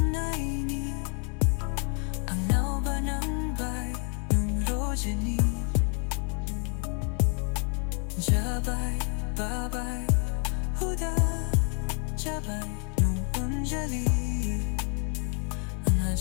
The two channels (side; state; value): right; quieter; 39.5 dB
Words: ni ang naubanambay nung rodya ni Jabay, babay, huda Jabay nung anjali ang